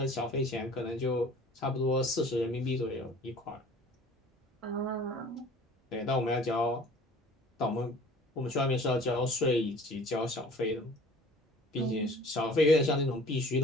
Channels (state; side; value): normal; both; correlation 0.48